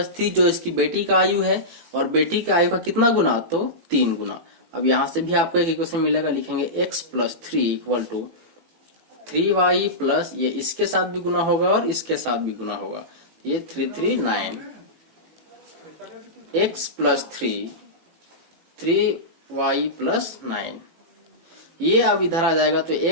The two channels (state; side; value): late; left; 18 ms